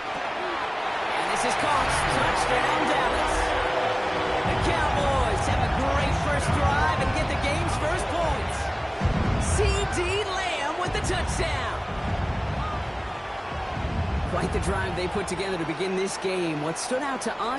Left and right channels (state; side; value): identical; both; correlation 1.00